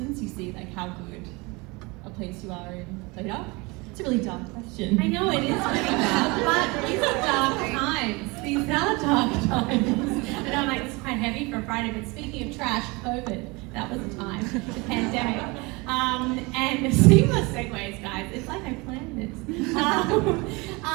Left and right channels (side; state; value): left; quieter; 25.9 dB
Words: you see like how good a place you are in later. It's a really dark question. I know it is pretty dark, but these are dark times. These are dark times. I know, like, it's quite heavy for a Friday, but speaking of trash, COVID, that was a time, the pandemic. And seamless segues, guys. It's like I planned this.